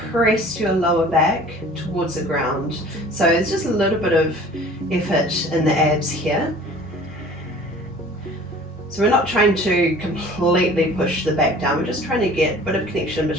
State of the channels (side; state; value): both; normal; correlation 0.47